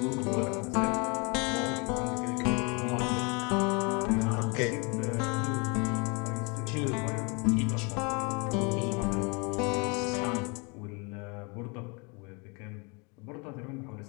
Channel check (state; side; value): quieter; right; 31.4 dB